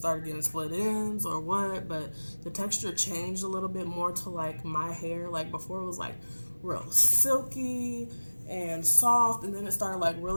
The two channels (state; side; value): inverted; both; correlation -1.00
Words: getting split ends or what, but the texture changed a little bit more to like my hair. Like before it was like real silky and soft, and then it started like